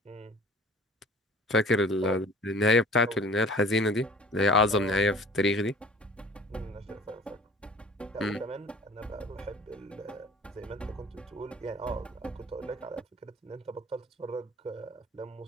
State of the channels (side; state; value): both; normal; correlation 0.48